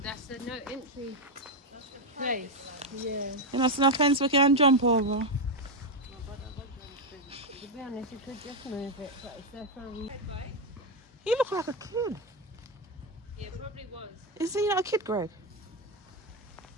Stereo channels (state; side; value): normal; both; correlation 0.05